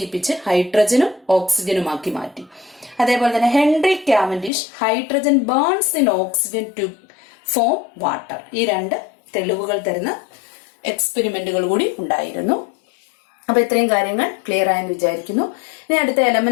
ഹൈഡ്രജനും ഓക്സിജനുമാക്കി മാറ്റി. അതേപോലെ തന്നെ Henry Cavendish hydrogen burns in oxygen to form water. ഈ 2 തെളിവുകൾ തരുന്ന എക്സ്പെരിമെന്റുകൾ കൂടി ഉണ്ടായിരുന്നു. അപ്പൊ ഇത്രയും കാര്യങ്ങൾ ക്ലിയർ ആയെന്ന് വിചാരിക്കുന്നു. ഇനി അടുത്ത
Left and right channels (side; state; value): right; drops out; at 4.5 s